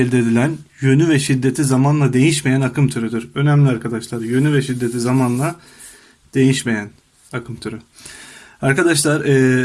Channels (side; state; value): both; identical; correlation 1.00